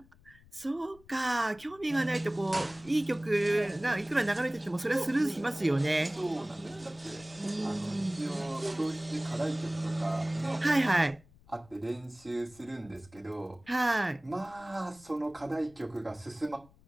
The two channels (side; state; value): left; noise; rumble, 26 dB below the sound